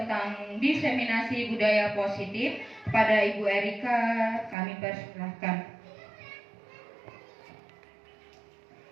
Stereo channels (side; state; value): left; drops out; at 4.5 s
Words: diseminasi budaya positif. Kepada Ibu Erika kami persilahkan.